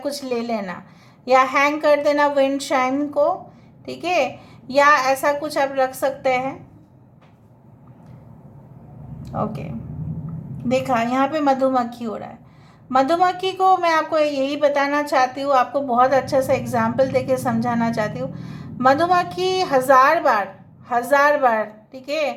ले लेना, या हैंग कर देना विंड शाइन को, ठीक है, या ऐसा कुछ आप रख सकते हैं। ओके, देखा यहाँ पे मधुमक्खी हो रहा है। मधुमक्खी को मैं आपको यही बताना चाहती हूँ, आपको बहुत अच्छा सा एग्जाम्पल देके समझाना चाहती हूँ। मधुमक्खी 1000 बार, ठीक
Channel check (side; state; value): both; identical; correlation 1.00